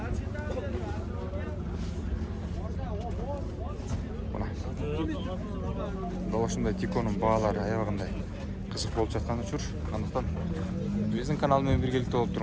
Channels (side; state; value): both; identical; correlation 1.00